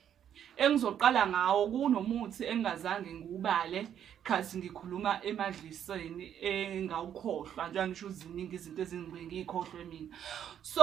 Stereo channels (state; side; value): quieter; left; 9.5 dB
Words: Engizoqala ngawo kunomuthi engazange ngiubale khathi ngikhuluma emadliseni engawukhohlwa, njengoba ngisho ziningi izinto ezingibeke ngikhohlwe mina.